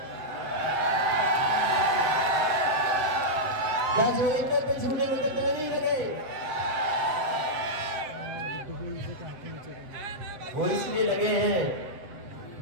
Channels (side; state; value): left; late; 7.9 ms